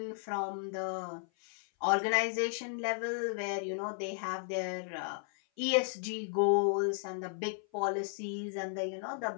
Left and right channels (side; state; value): right; silent; 55 dB below the other